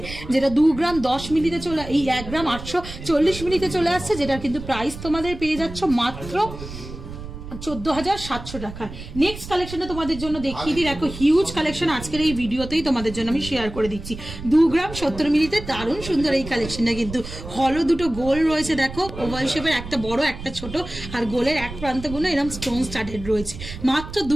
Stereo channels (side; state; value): right; noise; rumble, 11 dB below the sound